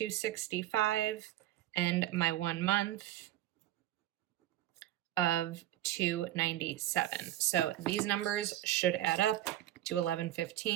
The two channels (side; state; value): left; quieter; 13.7 dB